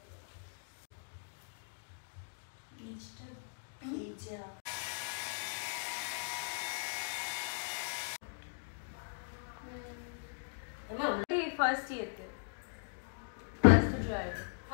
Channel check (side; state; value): right; silent; digital silence